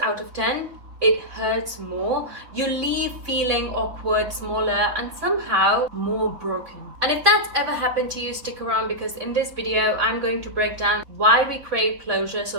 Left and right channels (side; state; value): left; late; 3.6 ms